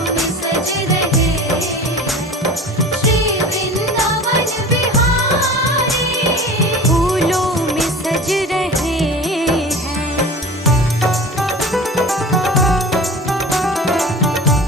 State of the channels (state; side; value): normal; both; correlation 0.37